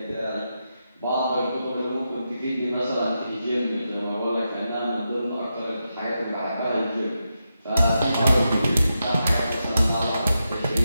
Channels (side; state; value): both; inverted; correlation -0.87